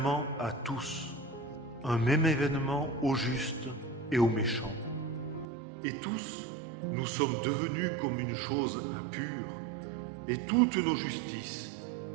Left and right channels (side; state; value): left; drops out; at 5.5 s